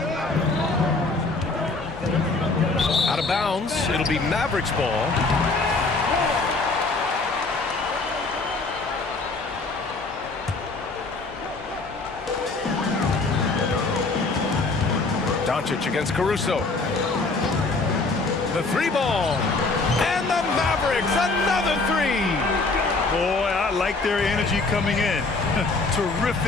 Out of bounds. It'll be Mavericks ball. Doncic against Caruso. The three ball. And the Mavericks, another three. Boy, I like their energy coming in.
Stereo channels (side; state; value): right; quieter; 3.6 dB